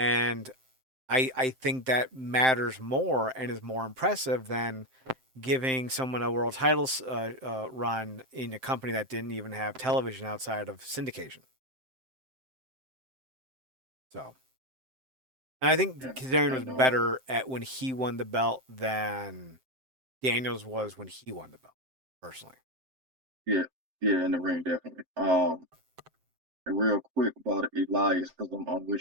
I think that matters more and is more impressive than giving someone a world title run in a company that didn't even have television outside of syndication. So, and I think yeah, Kazarian I was know. better at when he won the belt than Daniels was when he won the belt, personally. Yeah, yeah, in the ring definitely. And real quick about Elias, because I'm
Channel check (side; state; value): left; late; 7.7 ms